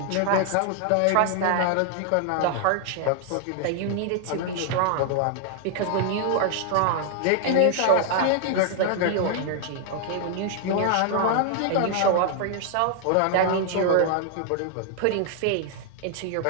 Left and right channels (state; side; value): different; both; correlation 0.00